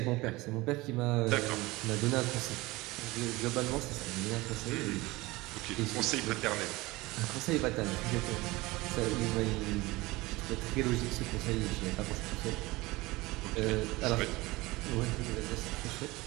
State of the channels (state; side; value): quieter; left; 21.1 dB